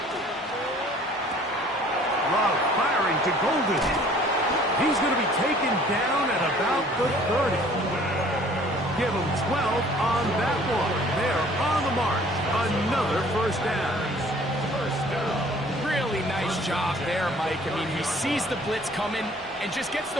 Love firing to Golden. He's going to be taken down at about the 30. Give him 12 on that one. They're on the march. Another first down. Really nice job there, Mike. I mean, he sees the blitz coming and just gets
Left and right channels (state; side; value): normal; both; correlation 0.54